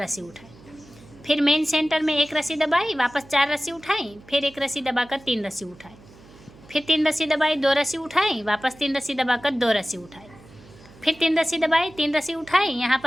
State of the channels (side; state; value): right; noise; hum, 23 dB below the sound